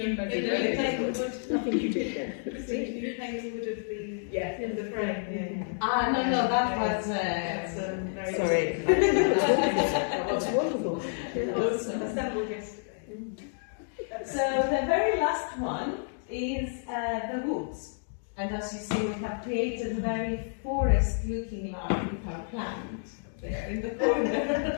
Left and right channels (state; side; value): silent; right; digital silence